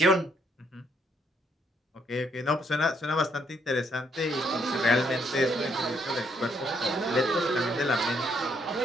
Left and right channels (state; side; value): normal; both; correlation 0.72